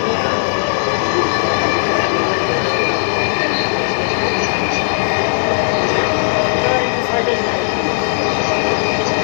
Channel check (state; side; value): silent; right; digital silence